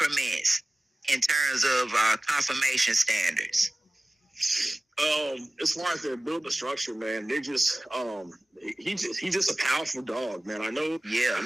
in terms of conformation standards? As far as their building structure, man, they just he's just a powerful dog, man. I know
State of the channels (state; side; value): normal; both; correlation 0.97